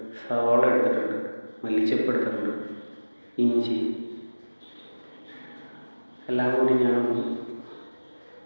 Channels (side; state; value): both; inverted; correlation -1.00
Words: സവാള എടുത്തിട്ടുണ്ട്, മല്ലിച്ചപ്പ് എടുത്തിട്ടുണ്ട്, ഇഞ്ചി എല്ലാം കൂടി ഞാൻ